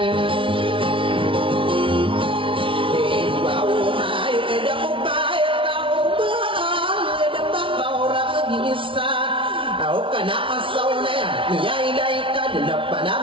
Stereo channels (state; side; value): late; left; 0.25 ms